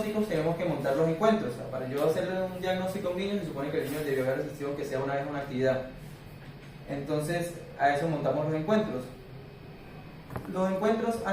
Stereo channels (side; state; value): both; identical; correlation 1.00